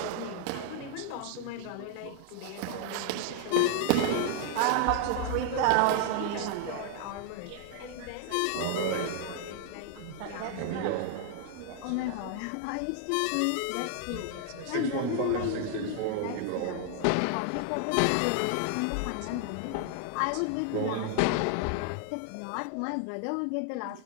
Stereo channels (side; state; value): both; different; correlation 0.00